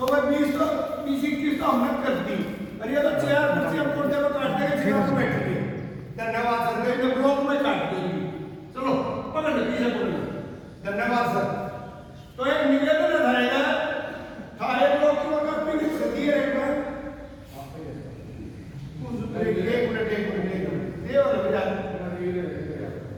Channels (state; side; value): identical; both; correlation 1.00